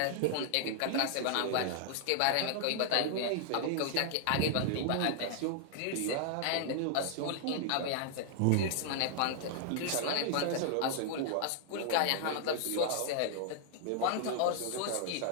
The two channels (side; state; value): both; different; correlation 0.00